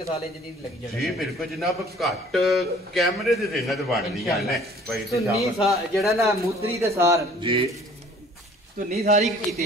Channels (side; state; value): both; normal; correlation 0.53